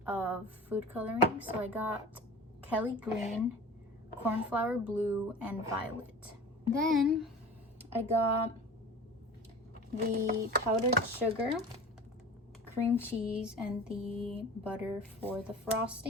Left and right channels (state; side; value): normal; both; correlation 0.38